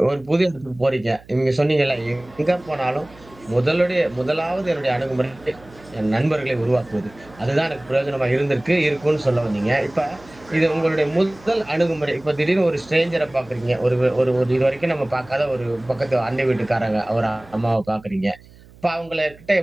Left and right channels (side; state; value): right; noise; hum, 24 dB below the sound